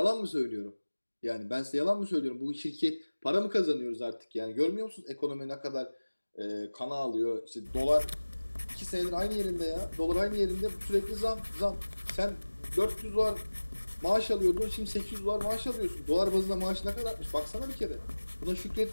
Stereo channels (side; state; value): both; inverted; correlation -1.00